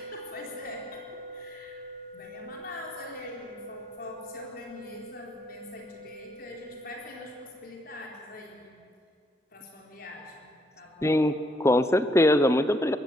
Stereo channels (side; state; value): both; normal; correlation 0.71